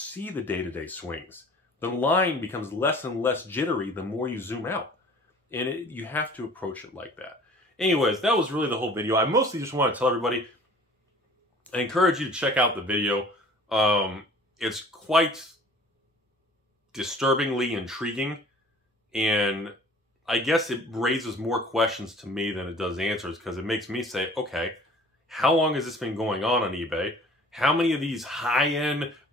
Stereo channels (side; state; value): both; normal; correlation 0.48